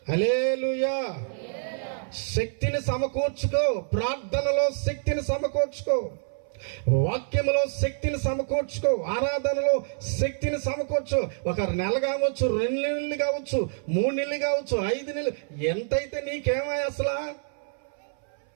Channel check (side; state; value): left; silent; 60 dB below the other